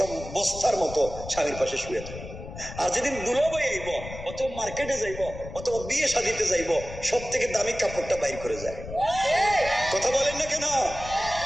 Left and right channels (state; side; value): noise; left; rumble, 12 dB below the sound